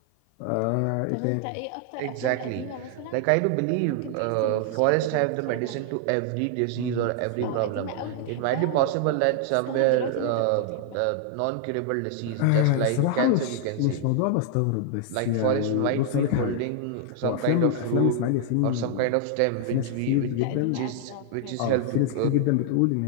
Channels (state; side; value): different; both; correlation 0.00